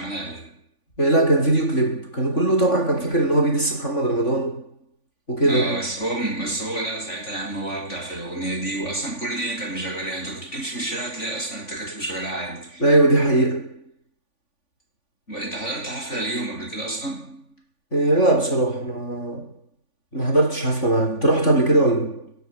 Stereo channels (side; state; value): right; late; 3.5 ms